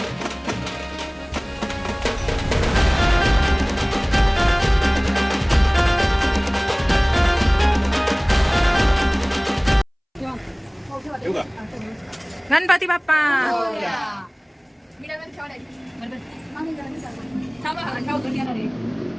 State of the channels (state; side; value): identical; both; correlation 1.00